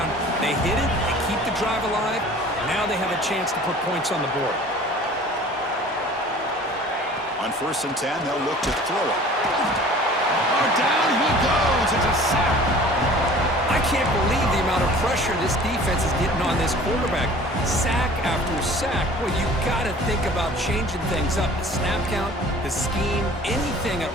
They hit it, they keep the drive alive, now they have a chance to put points on the board. On 1st and 10, they'll look to throw it. Oh, down he goes. It's a sack. I can't believe the amount of pressure this defense is getting on this quarterback. Sack after sack. Well, you got to think about changing things up. The snap count, the scheme, anything at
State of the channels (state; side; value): normal; both; correlation 0.46